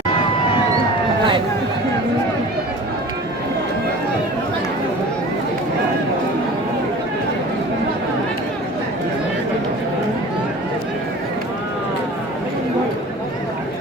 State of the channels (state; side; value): normal; both; correlation 0.40